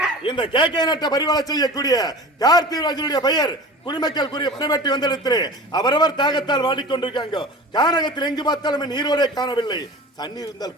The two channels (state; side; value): normal; both; correlation 0.37